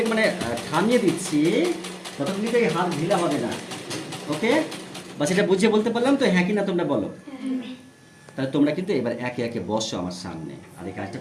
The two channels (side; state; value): both; identical; correlation 1.00